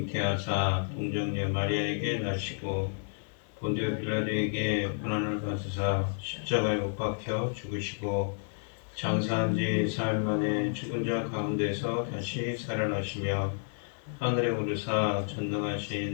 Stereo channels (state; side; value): silent; right; 57 dB below the other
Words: 동정녀 마리아에게 나시고 본디오 빌라도에게 고난을 받으사 십자가에 못 박혀 죽으시고 장사한 지 사흘 만에 죽은 자 가운데서 다시 살아나시며 하늘에 오르사